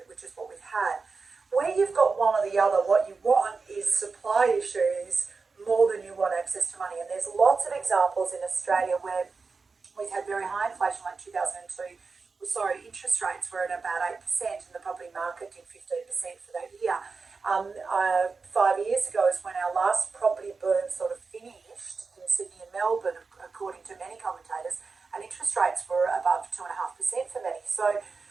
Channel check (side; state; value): left; quieter; 4.5 dB